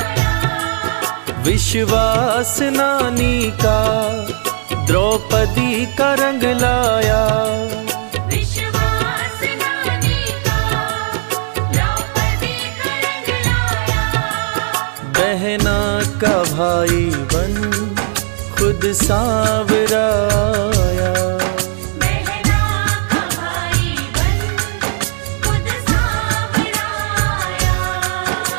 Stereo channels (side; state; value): left; silent; digital silence